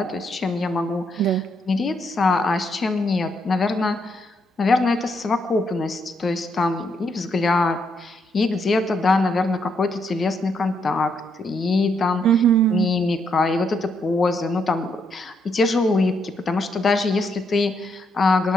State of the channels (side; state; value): both; normal; correlation 0.76